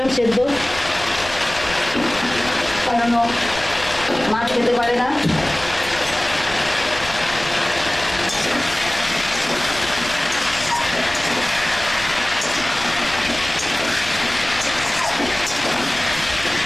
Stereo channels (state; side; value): noise; left; rumble, 15 dB below the sound